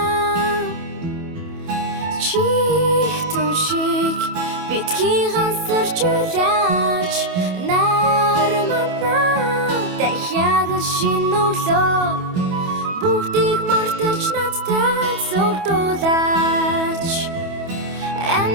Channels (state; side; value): late; left; 28 ms